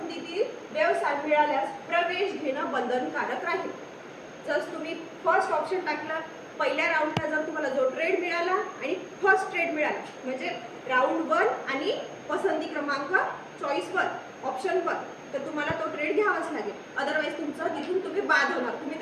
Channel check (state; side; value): identical; both; correlation 1.00